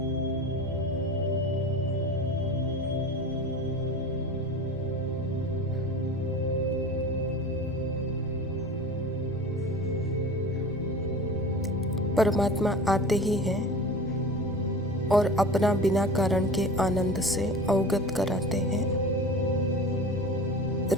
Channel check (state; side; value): noise; left; rumble, 15 dB below the sound